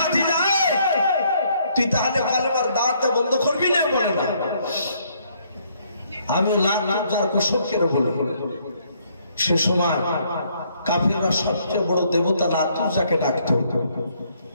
তুই তাহলে কলমার দাওয়াত দেওয়া বন্ধ করবি না? বলে না, আমি লাখ যার কসম করে বলবো। সে সময় কাফিররা সবচেয়ে বড় দেবতা লাতুজাকে ডাকত।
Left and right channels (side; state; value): both; inverted; correlation -0.68